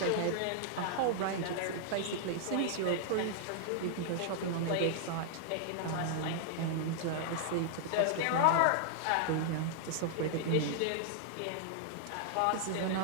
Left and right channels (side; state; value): both; different; correlation -0.01